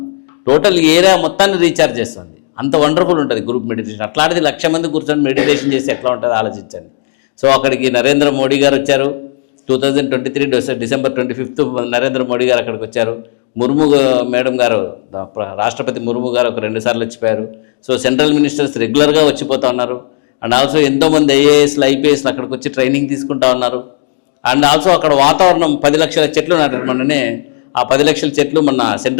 టోటల్ ఏరియా మొత్తాన్ని రీఛార్జ్ చేస్తుంది. అంత వండర్ఫుల్ ఉంటుంది గ్రూప్ మెడిటేషన్. అట్లాంటిది 1,00,000 మంది కూర్చొని మెడిటేషన్ చేసి ఎట్లా ఉంటుందో ఆలోచించండి. సో అక్కడికి నరేంద్ర మోడీ గారు వచ్చారు. 2023 డిసెంబర్ 25 నరేంద్ర మోడీ గారు అక్కడికి వచ్చారు. ముర్ము మేడం గారు, రాష్ట్రపతి ముర్ము గారు ఒక 2 సార్లు వచ్చిపోయారు. సో సెంట్రల్ మినిస్టర్స్ రెగ్యులర్గా వచ్చిపోతూ ఉన్నారు. అండ్ ఆల్సో ఎంతోమంది ఐఏఎస్లు ఐపీఎస్లు అక్కడికి వచ్చి ట్రైనింగ్ తీసుకుంటా ఉన్నారు. అండ్ ఆల్సో అక్కడ వాతావరణం 10 లక్షల చెట్లు నాటారు. మొన్ననే ఆ 10 లక్షల చెట్లు మొన్న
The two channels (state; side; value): silent; right; digital silence